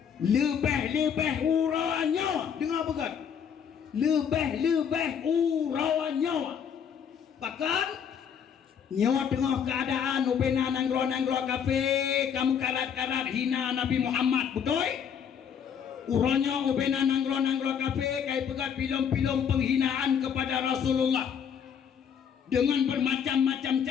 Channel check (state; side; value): quieter; right; 7.7 dB